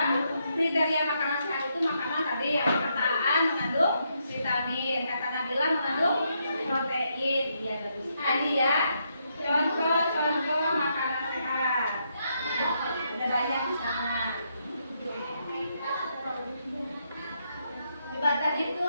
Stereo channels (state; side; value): inverted; both; correlation -0.78